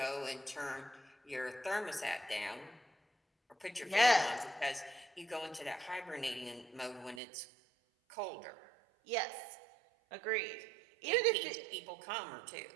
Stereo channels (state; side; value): drops out; left; at 7.2 s